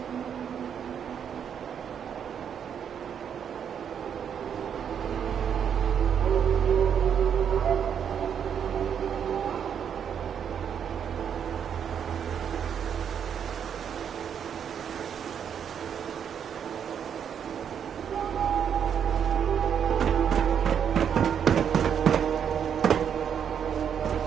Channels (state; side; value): quieter; left; 8.1 dB